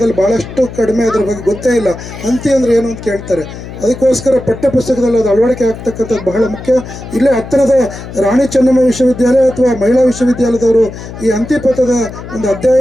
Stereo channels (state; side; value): noise; left; hum, 12 dB below the sound